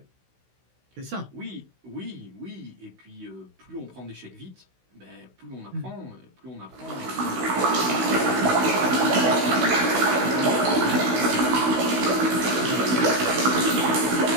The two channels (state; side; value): late; left; 16 ms